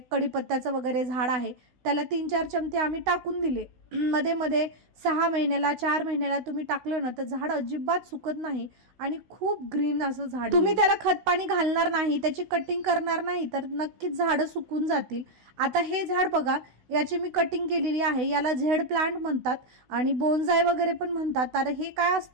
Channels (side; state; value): left; late; 16 ms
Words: कढीपत्त्याचं वगैरे झाड आहे त्याला 3-4 चमचे आम्ही टाकून दिले। मध्ये मध्ये 6 महिन्याला 4 महिन्याला तुम्ही टाकलं ना तर झाड अजिबात सुकत नाही आणि खूप ग्रीन असं झाड। तुम्ही त्याला खत पाणी घालणार नाही, त्याची कटिंग करणार नाही तर नक्कीच झाडं सुकून जातील। आता हे झाड बघा, याची मी कटिंग केलेली आहे, याला झेड प्लांट म्हणतात आणि बोन्साय वगैरे पण म्हणतात। तर हे काय